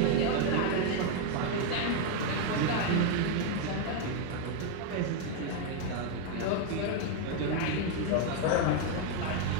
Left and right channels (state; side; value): different; both; correlation 0.01